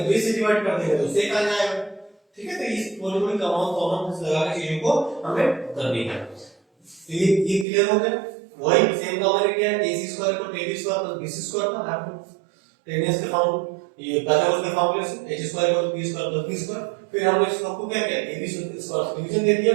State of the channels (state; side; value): drops out; left; at 7.7 s